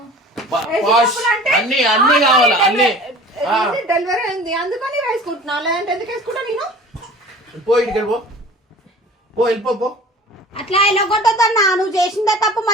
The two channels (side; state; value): both; normal; correlation 0.43